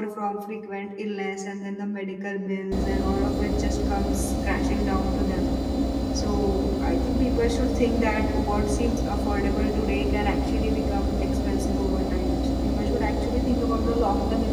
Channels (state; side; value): identical; both; correlation 1.00